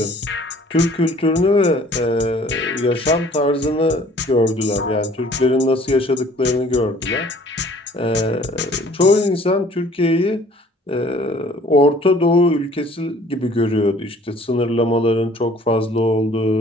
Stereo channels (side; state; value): both; normal; correlation 0.54